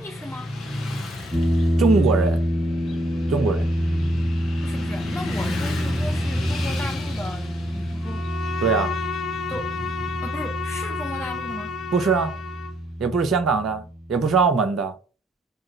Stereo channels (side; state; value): both; normal; correlation 0.70